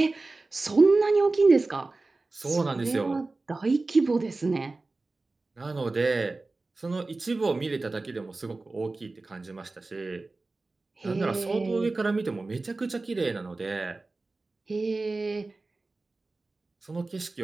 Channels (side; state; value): left; quieter; 3.4 dB